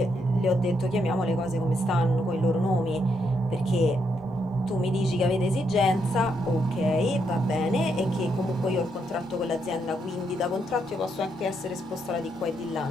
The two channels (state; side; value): normal; both; correlation 0.78